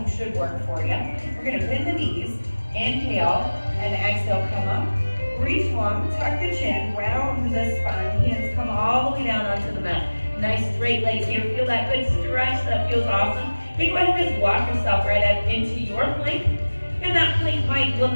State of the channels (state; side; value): inverted; both; correlation -1.00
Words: should work for you. We're gonna bend the knees, inhale and exhale, come up. Reach long, tuck the chin, round the spine, hands come all the way down onto the mat. Nice straight legs here, feel that good stretch, that feels awesome. You go ahead and just walk yourself right up into your plank. And that plank might